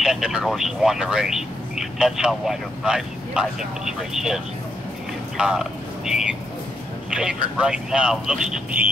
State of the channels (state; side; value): normal; both; correlation 0.80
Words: different horses won the race. That's how wide open I think this race is. The favorite right now looks to